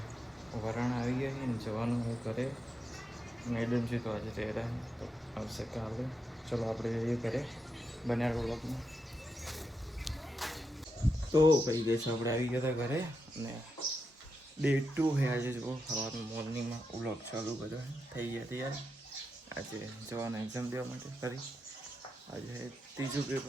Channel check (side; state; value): both; normal; correlation 0.86